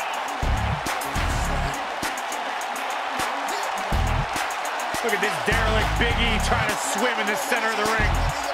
Look at this derelict Big E trying to swim in the center of the ring.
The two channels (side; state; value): both; identical; correlation 1.00